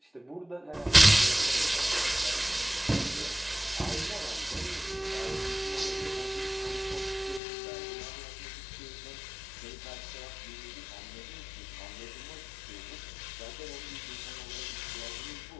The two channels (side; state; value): right; drops out; at 7.4 s